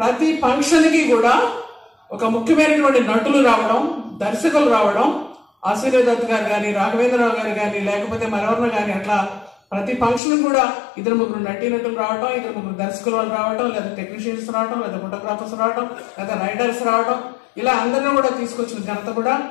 ఫంక్షన్కి కూడా ఒక ముఖ్యమైనటువంటి నటులు రావడం, దర్శకులు రావడం, ఆశీర్వాద్ గారు కానీ, రాఘవేంద్రరావు గారు కానీ, లేకపోతే మరెవరిన కానీ, అట్లా ప్రతి ఫంక్షన్ కూడా 2-3 నటీనటులు రావడం, 2-3 దర్శకులు వాళ్ళు రావడం, లేదా టెక్నీషియన్స్ రావడం, లేదా ఫోటోగ్రాఫర్స్ రావడం, లేదా రైడర్స్ రావడం, ఇలా అందరినీ కూడా తీసుకొచ్చిన ఘనత కూడా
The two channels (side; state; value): right; drops out; at 10.2 s